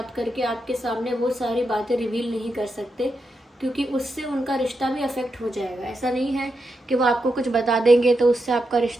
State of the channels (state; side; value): normal; both; correlation 0.85